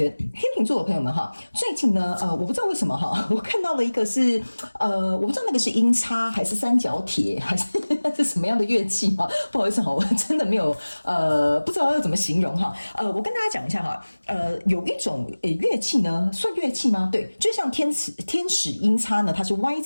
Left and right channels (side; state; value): both; inverted; correlation -1.00